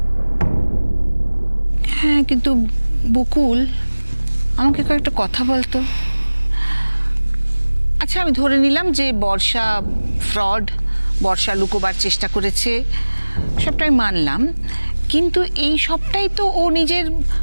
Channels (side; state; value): both; inverted; correlation -1.00